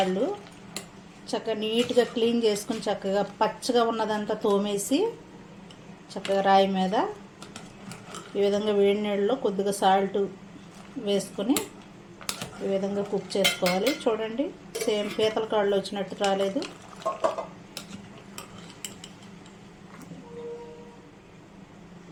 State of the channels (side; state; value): both; identical; correlation 1.00